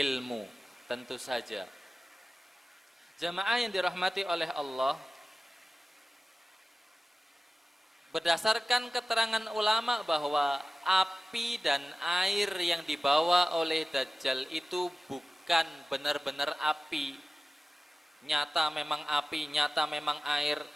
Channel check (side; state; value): both; normal; correlation 0.96